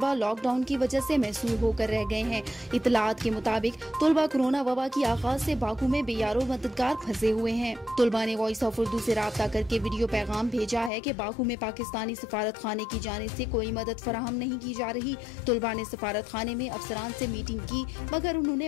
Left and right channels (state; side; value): drops out; right; at 10.9 s